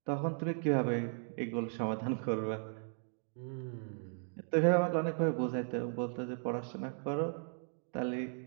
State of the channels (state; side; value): silent; left; 54 dB below the other